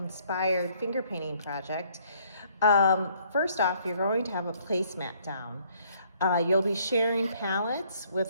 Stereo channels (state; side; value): inverted; both; correlation -0.64